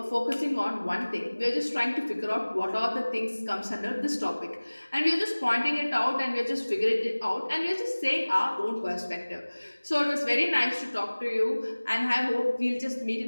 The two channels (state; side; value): inverted; both; correlation -1.00